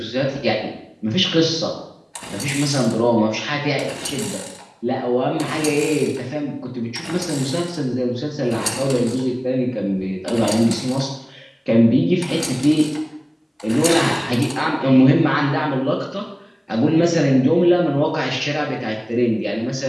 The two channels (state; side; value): identical; both; correlation 1.00